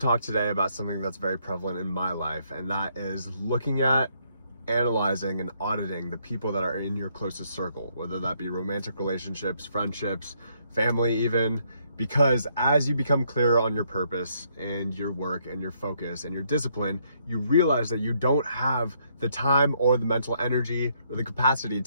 today about something that's very prevalent in my life, and that is looking at, analyzing, and auditing the people that are in your closest circle, whether that be romantic relationships, friendships, family even, because as you become clearer on your purpose and your work and your focus and your discipline, you realize that you don't have the time or the mental energy or the capacity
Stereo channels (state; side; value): inverted; both; correlation -0.71